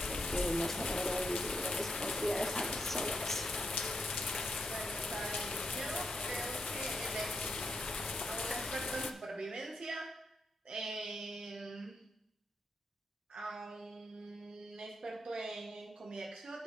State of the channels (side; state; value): both; normal; correlation 0.83